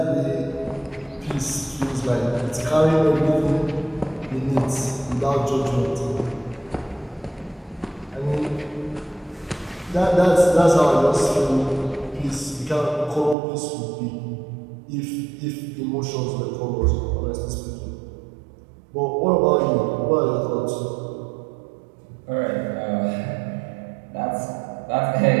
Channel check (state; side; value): drops out; left; at 13.4 s